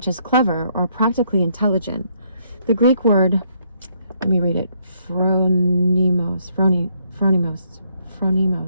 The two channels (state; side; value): inverted; both; correlation -0.71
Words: as clever or practically intelligent. The Greek word, let me read it, phronimos,